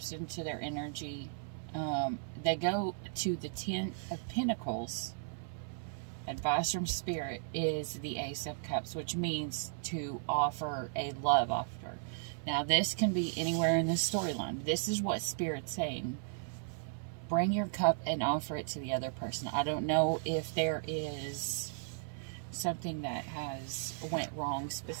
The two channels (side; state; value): left; silent; 54 dB below the other